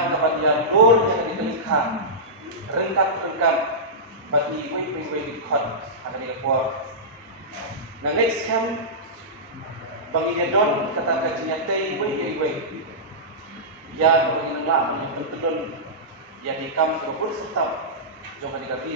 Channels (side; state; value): both; normal; correlation -0.15